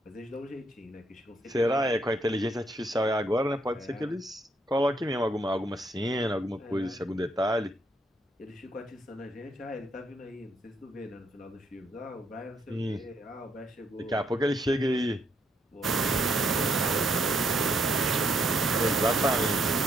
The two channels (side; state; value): both; normal; correlation 0.73